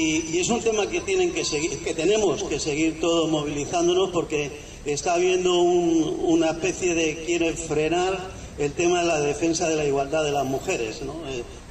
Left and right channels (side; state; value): both; identical; correlation 1.00